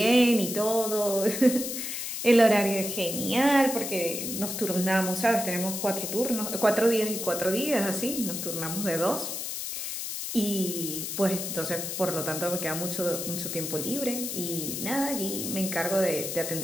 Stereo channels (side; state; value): left; noise; hiss, 5 dB below the sound